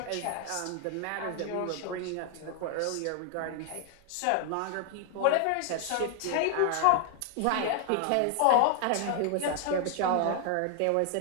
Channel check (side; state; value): both; different; correlation 0.00